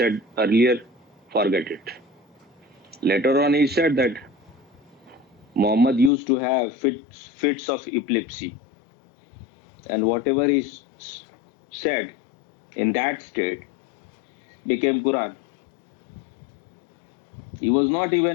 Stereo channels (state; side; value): drops out; right; at 6.1 s